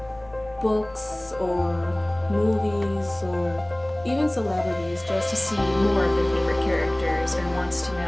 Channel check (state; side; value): noise; left; rumble, 23 dB below the sound